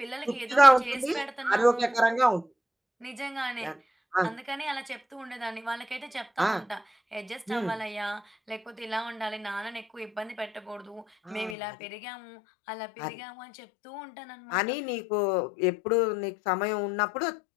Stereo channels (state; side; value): drops out; right; at 11.6 s